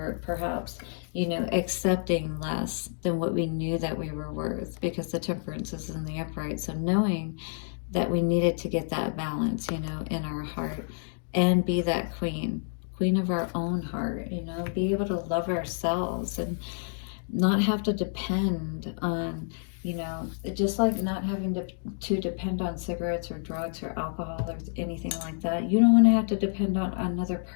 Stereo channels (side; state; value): right; silent; digital silence